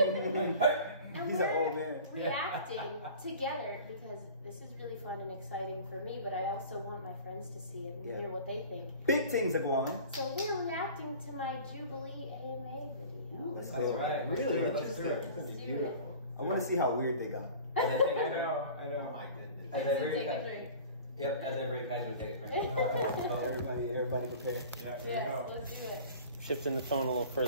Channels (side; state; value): both; inverted; correlation -0.42